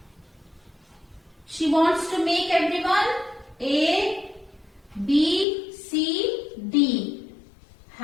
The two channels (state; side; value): drops out; right; at 5.5 s